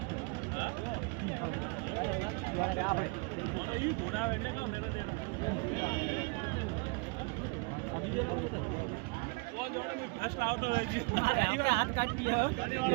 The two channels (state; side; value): quieter; left; 29.4 dB